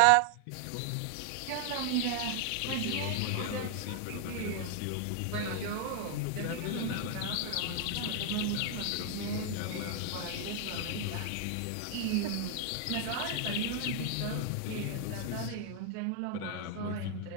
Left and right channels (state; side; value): different; both; correlation 0.00